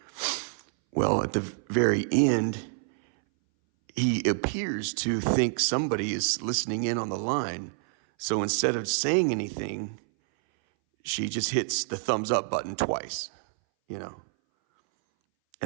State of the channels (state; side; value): silent; left; 60 dB below the other